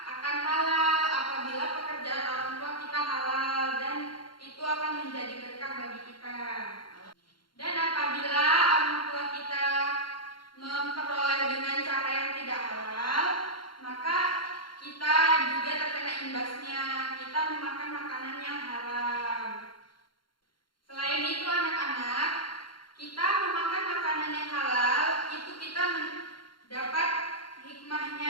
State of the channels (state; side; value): late; right; 0.72 ms